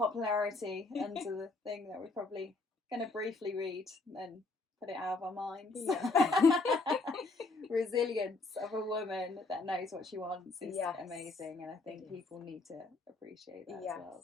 under the thing that we're probably going to briefly read and then put it out of our minds. Resilience of a woman that knows what she wants is amazing, and I think people need to appreciate that as well.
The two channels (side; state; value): right; quieter; 3.4 dB